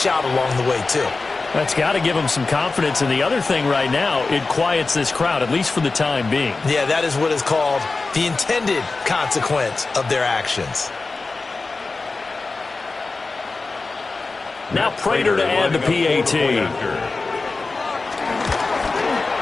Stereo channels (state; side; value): quieter; right; 3.8 dB